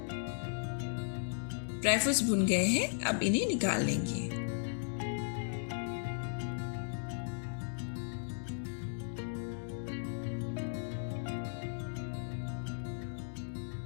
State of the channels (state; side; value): silent; right; digital silence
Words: ड्राई फ्रूट्स भुन गए हैं, अब इन्हें निकाल लेंगे।